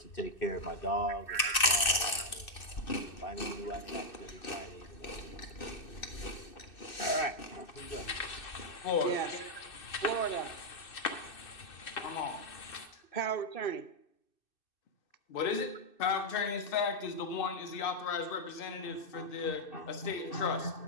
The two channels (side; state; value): right; late; 2.6 ms